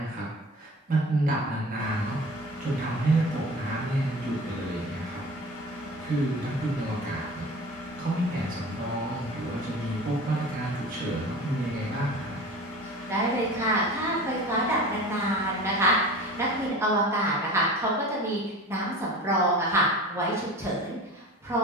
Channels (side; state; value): both; normal; correlation 0.37